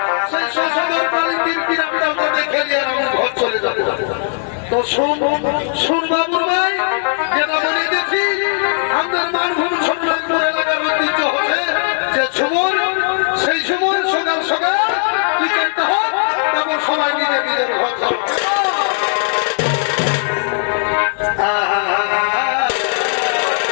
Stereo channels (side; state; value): right; silent; digital silence